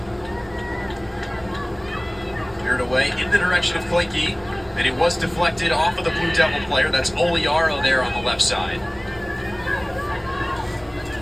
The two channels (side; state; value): right; noise; rumble, 23 dB below the sound